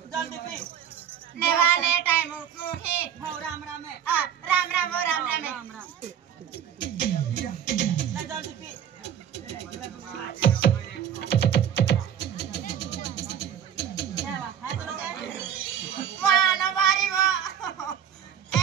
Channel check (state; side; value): quieter; left; 9.1 dB